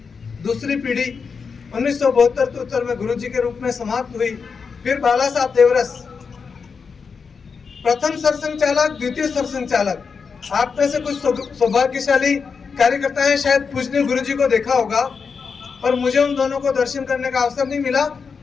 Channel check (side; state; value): right; quieter; 5.5 dB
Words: दूसरी पीढ़ी 1972 में गुरुजी के रूप में समाप्त हुई। फिर बाला साहब देवरस, प्रथम सरसंघ चालक, द्वितीय सरसंघ चालक। आप में से कुछ सौभाग्यशाली कार्यकर्ता हैं, शायद पूजनीय गुरुजी को देखा होगा, पर मुझे उन दोनों को दर्शन करने का अवसर नहीं मिला।